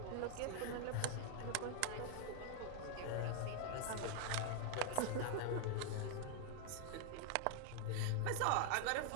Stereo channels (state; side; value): different; both; correlation 0.00